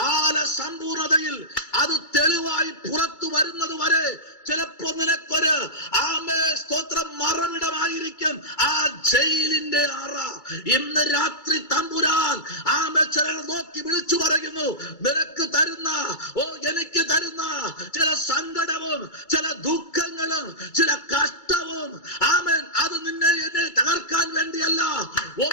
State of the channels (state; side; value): late; right; 2.3 ms